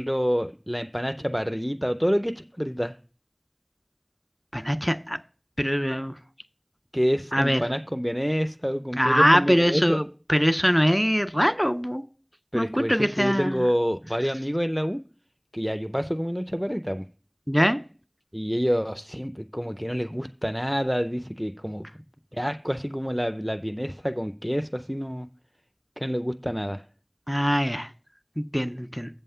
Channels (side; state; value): both; identical; correlation 1.00